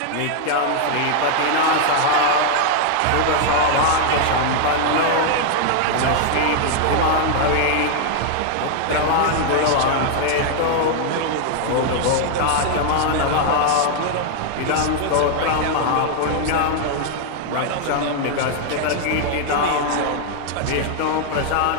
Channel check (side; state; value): both; different; correlation 0.00